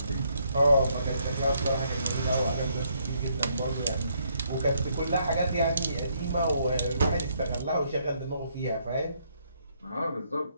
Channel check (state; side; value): inverted; both; correlation -0.72